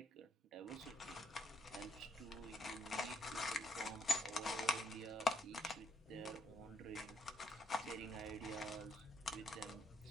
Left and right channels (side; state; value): both; normal; correlation 0.74